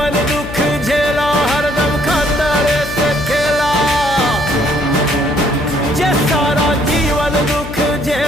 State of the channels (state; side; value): noise; left; hum, 10 dB below the sound